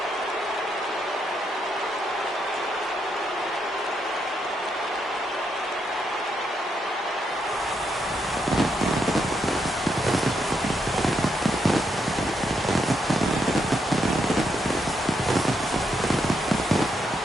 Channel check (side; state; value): both; normal; correlation 0.79